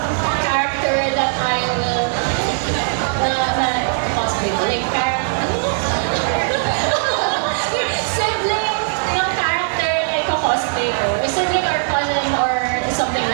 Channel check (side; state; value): left; silent; digital silence